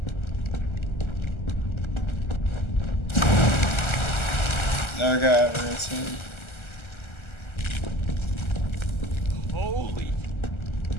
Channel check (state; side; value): late; right; 1.3 ms